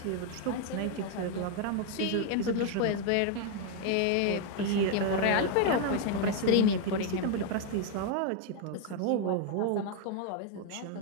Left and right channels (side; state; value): both; different; correlation 0.01